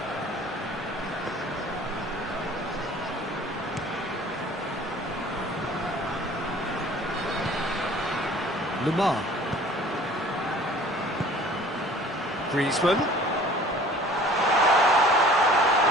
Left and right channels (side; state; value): both; normal; correlation 0.49